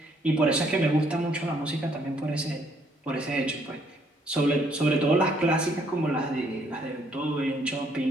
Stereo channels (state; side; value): normal; both; correlation 0.68